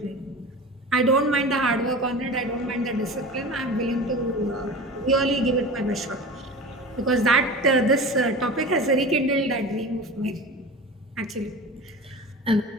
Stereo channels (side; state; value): both; normal; correlation 0.33